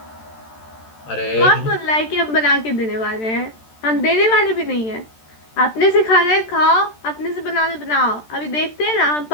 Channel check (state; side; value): late; right; 13 ms